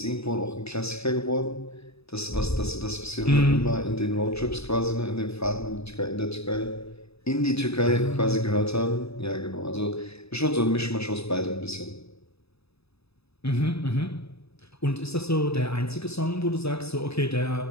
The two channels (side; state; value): right; late; 0.79 ms